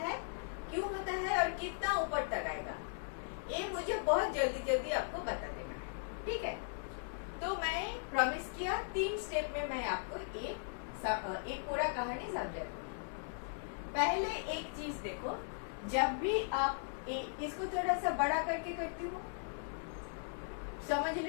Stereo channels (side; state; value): right; silent; digital silence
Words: है और कितना ऊपर तक आएगा, ये मुझे बहुत जल्दी आपको बता देना है. ठीक है, तो मैं प्रॉमिस किया 3 स्टेप में मैं आपको एक पूरा कहानी समझा दूंगी. पहले एक चीज देखो, जब भी आप इसको थोड़ा सा बड़ा करके करती हूँ, समझ